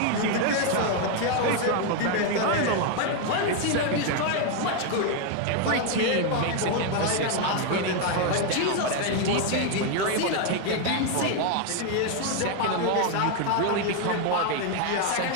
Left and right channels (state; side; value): different; both; correlation 0.01